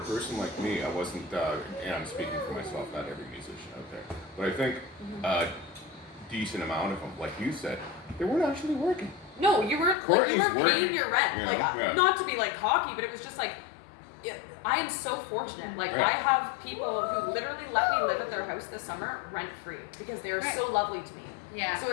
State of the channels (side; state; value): right; drops out; at 10.0 s